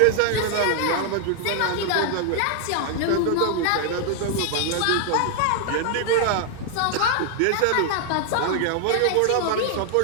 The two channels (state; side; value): different; both; correlation 0.00